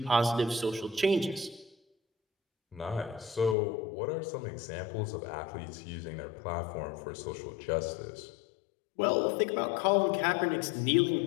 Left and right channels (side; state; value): right; drops out; at 3.6 s